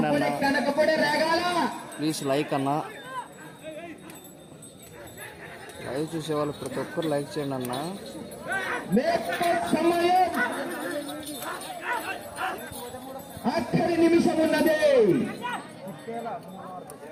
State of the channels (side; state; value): both; identical; correlation 1.00